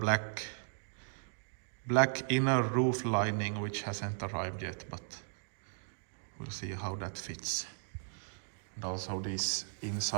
inner roof lining, which hasn't arrived yet, but we'll see how that fits. And also these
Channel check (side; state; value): left; silent; digital silence